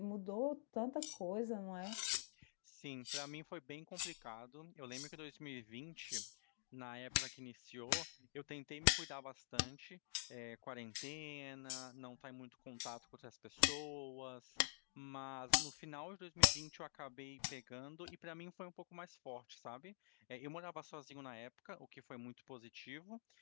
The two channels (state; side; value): silent; right; digital silence